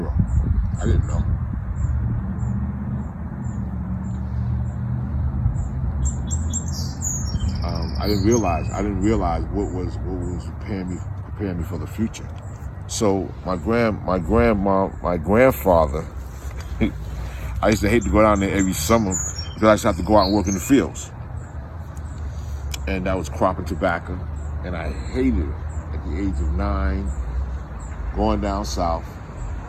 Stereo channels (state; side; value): identical; both; correlation 1.00